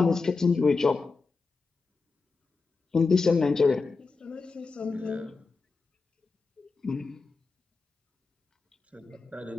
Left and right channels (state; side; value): quieter; right; 4.2 dB